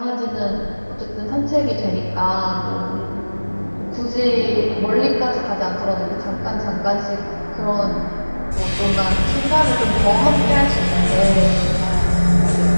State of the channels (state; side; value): inverted; both; correlation -1.00